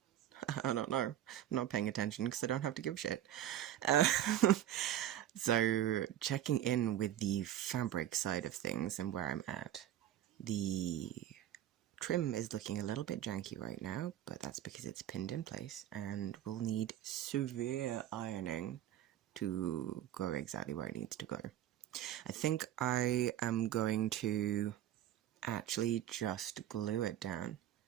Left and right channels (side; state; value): left; quieter; 12.0 dB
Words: I don't know. I'm not paying attention because I don't have to give a shit. Uh, so, checking in with the fabric side of things and where I'm at. The trim is looking a little bit janky right now, but that's because it's pinned in place and will need severe ironing to go exactly where it needs to go. I think I am going to actually just glue it down